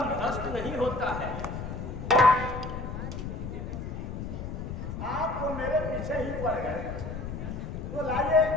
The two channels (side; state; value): left; noise; rumble, 6 dB below the sound